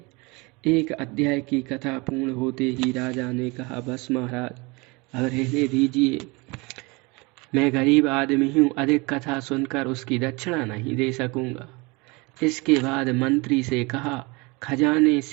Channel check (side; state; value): left; quieter; 26.3 dB